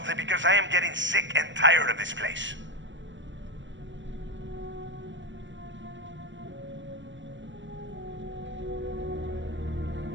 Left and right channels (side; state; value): left; late; 0.54 ms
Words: because I am getting sick and tired of this place.